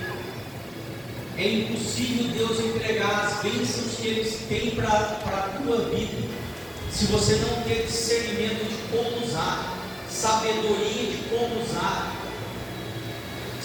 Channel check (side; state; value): both; identical; correlation 1.00